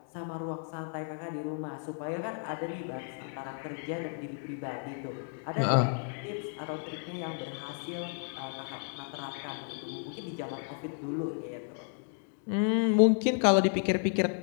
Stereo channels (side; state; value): right; silent; 56 dB below the other